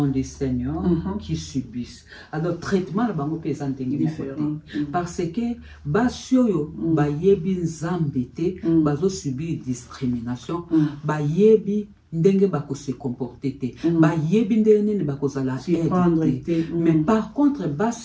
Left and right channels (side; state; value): both; identical; correlation 1.00